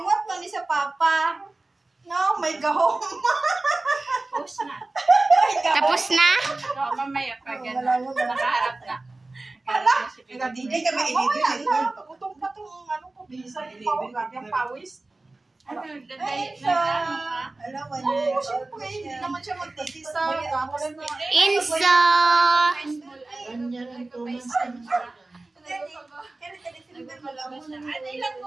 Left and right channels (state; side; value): quieter; left; 3.1 dB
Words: mo ni sa papa. No, may gahom. Post na. Tapos na? So, mamaya pa gano'n. Nakaharap na. Hala, hindi ka ma-edit. Utong pa itong ko, bisa. Yung pawis. Ano, Ay, na ano ka? Alam mo Oo, syempre, hindi naman siya magtitisa. Tapos na. Insa! Ganyan ang tumas. Ano ilang